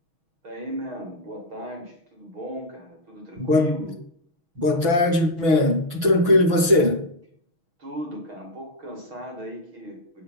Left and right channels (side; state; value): left; late; 6.0 ms